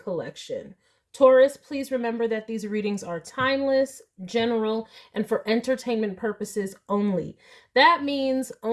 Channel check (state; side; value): identical; both; correlation 1.00